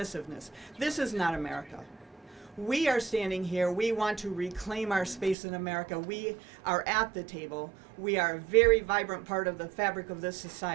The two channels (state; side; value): drops out; left; at 5.4 s